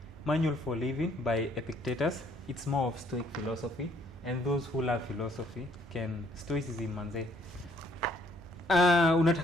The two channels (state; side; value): normal; both; correlation 0.65